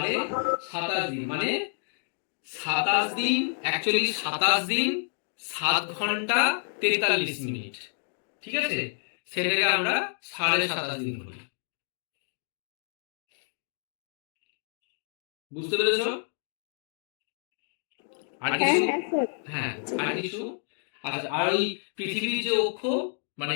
দিন মানে 27 দিন, অ্যাকচুয়ালি 27 দিন 7 ঘন্টা 43 মিনিট। ঠিক আছে, সেটাকে আমরা 27.5 দিন বলি। বুঝতে পেরেছো? আর হ্যাঁ কিছু? হ্যাঁ স্যার। হ্যাঁ, আর কিছু? আচ্ছা, আর ওই পৃথিবীর যে অক্ষ,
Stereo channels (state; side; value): silent; right; 59 dB below the other